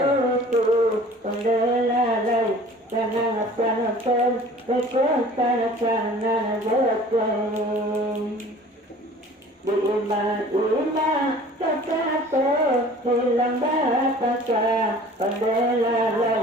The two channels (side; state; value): both; normal; correlation 0.47